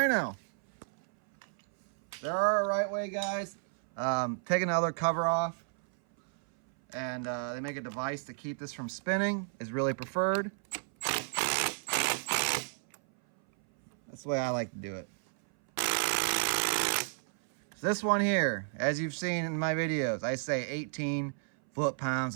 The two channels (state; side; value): silent; left; 56 dB below the other